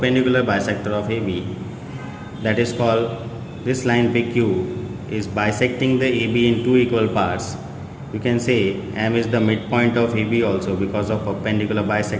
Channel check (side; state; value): both; identical; correlation 1.00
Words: bisector of AB. That is called, this line PQ is bisecting the AB in two equal parts. You can say M is the midpoint of AB also because of perpendicular